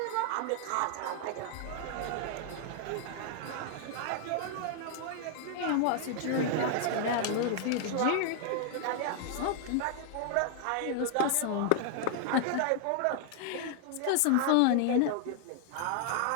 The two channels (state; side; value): different; both; correlation 0.00